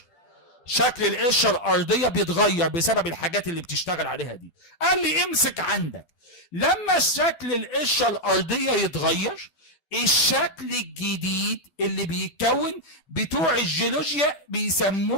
شكل القشره الارضيه بيتغير بسبب الحاجات اللي بتشتغل عليها دي. قال لي امسك عندك، لما شكل القشره الارضيه يتغير، الشكل الجديد اللي بيتكون بتوع الجيولوجيا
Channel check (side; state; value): right; late; 12 ms